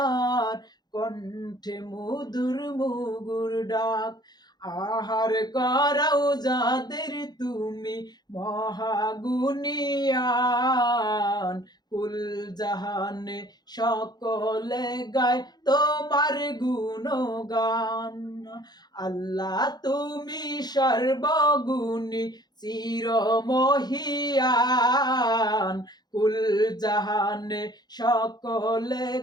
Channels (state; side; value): late; right; 0.20 ms